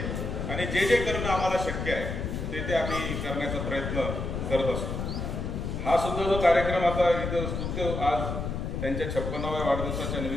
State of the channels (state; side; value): noise; left; rumble, 3 dB below the sound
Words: आणि जे जे करणं आम्हाला शक्य आहे ते आम्ही करण्याचा प्रयत्न करत असतो। हा सुद्धा जो कार्यक्रम आता इथं स्तुत्य आज त्यांच्या 56व्या वाढदिवसाच्या